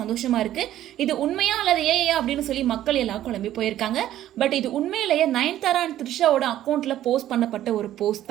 இருக்கு. இது உண்மையா அல்லது ஏயா அப்படின்னு சொல்லி மக்கள் எல்லாம் குழம்பி போயிருக்காங்க. பட் இது உண்மையிலேயே நயன்தாரா அண்ட் த்ரிஷாவோட அக்கௌண்ட்ல போஸ்ட் பண்ணப்பட்ட ஒரு போஸ்ட்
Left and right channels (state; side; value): quieter; left; 12.7 dB